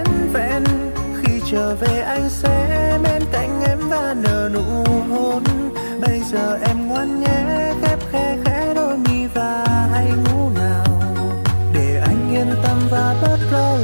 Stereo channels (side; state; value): both; inverted; correlation -1.00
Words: vẹn. Khi trở về anh sẽ bên cạnh em và nở nụ hôn. Bây giờ em ngoan nhé, khép khe khẽ đôi mi và hãy ngủ nào, để anh yên tâm và bớt lo